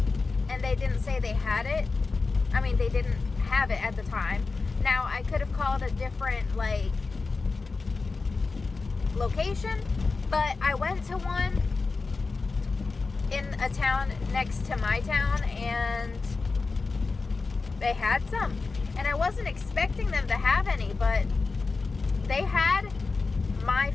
and they didn't say they had it. I mean, they didn't have it at the time. Now, I could have called a different like location, but I went to one in a town next to my town and they had some, and I wasn't expecting them to have any, but they had my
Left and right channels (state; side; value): quieter; right; 4.1 dB